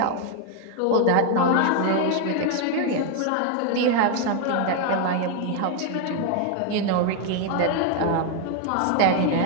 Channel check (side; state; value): both; different; correlation 0.01